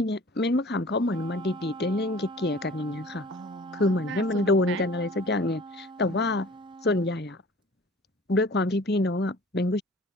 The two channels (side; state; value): both; normal; correlation 0.47